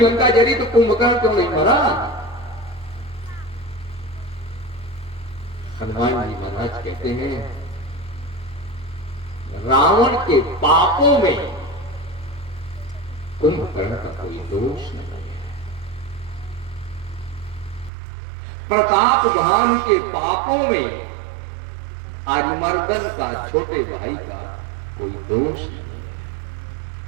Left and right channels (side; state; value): left; drops out; at 17.9 s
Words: जली तो कुंभकर्ण क्यों नहीं मरा? हनुमान जी महाराज कहते हैं रावण के पापों में कुंभकर्ण का कोई दोष नहीं है। प्रताप भानु के पापों में अरिमर्दन का छोटे भाई का कोई दोष नहीं है।